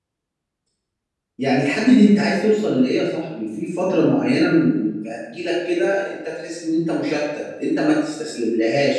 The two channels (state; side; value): identical; both; correlation 1.00